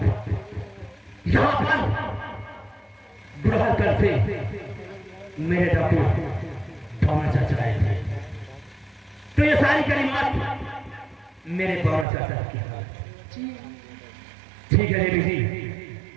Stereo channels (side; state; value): left; drops out; at 12.1 s